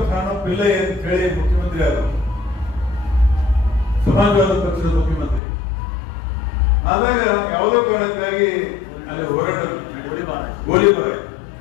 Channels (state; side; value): drops out; right; at 5.4 s